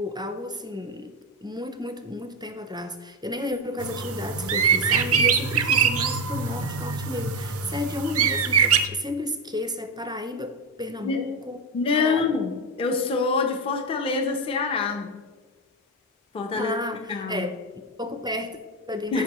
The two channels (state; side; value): normal; both; correlation 0.12